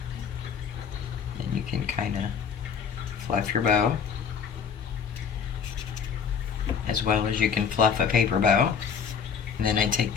Then you can kind of fluff your bow, as well as you can fluff a paper bow. And then I take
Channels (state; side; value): quieter; right; 6.6 dB